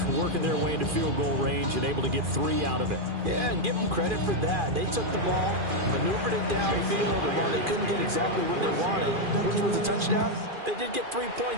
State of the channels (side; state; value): left; late; 2.4 ms